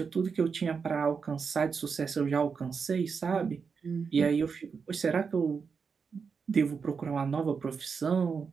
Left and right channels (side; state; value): left; quieter; 5.7 dB